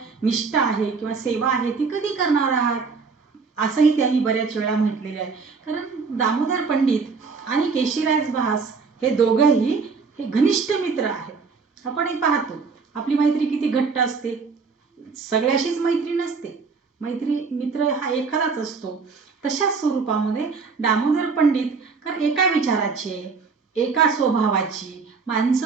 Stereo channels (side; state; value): left; quieter; 5.0 dB